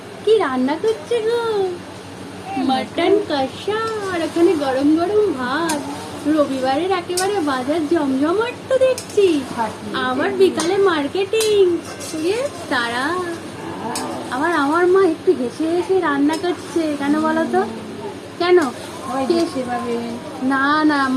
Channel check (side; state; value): both; identical; correlation 1.00